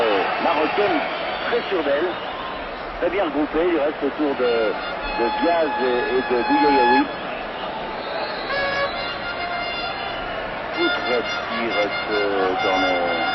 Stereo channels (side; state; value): both; identical; correlation 1.00